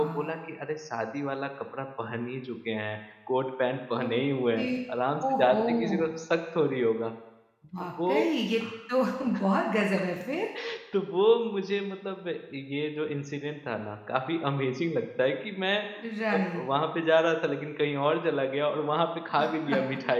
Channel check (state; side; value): identical; both; correlation 1.00